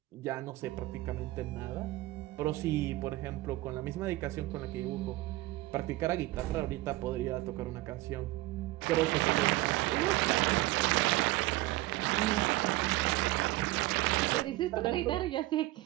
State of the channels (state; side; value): quieter; left; 18.8 dB